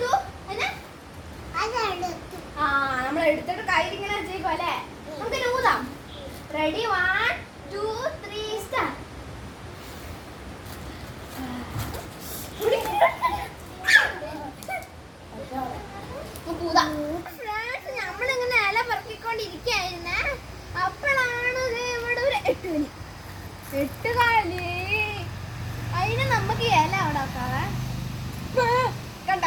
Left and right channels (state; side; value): identical; both; correlation 1.00